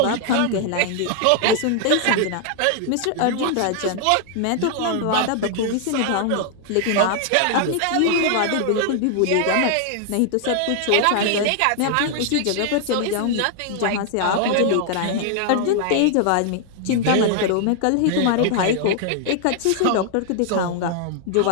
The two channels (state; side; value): different; both; correlation 0.00